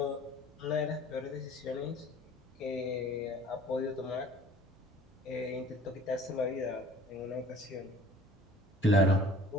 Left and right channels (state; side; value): normal; both; correlation 0.49